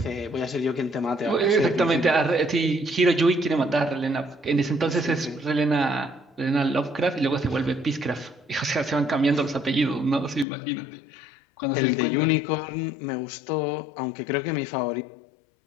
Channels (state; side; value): drops out; right; at 10.5 s